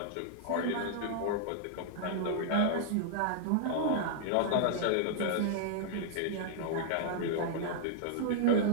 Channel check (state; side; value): different; both; correlation -0.01